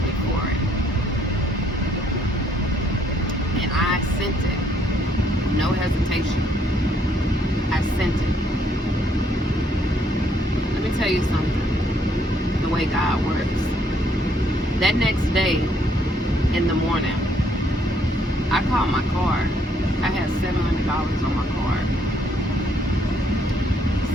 me for it. And I sent it. No hesitation. I sent it. Let me tell you something. The way God works. That next day, in the morning, I called my card. I had $700 on my card.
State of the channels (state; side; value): normal; both; correlation 0.69